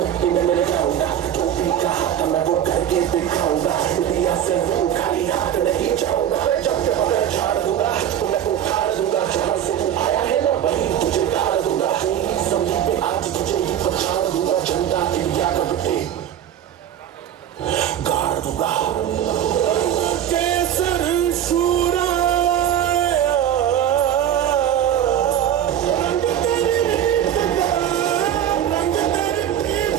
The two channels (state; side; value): quieter; left; 10.3 dB